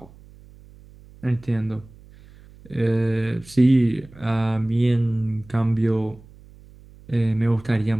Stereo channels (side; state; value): right; noise; hum, 23 dB below the sound